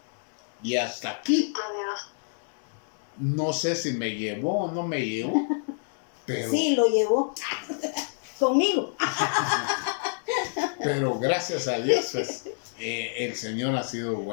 Y hasta aquí, no sé si me llevó o no me llevó, pero... Sí, lo llevó conmigo. Pero gracias a Dios, pues, el Señor ha sido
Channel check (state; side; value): silent; right; digital silence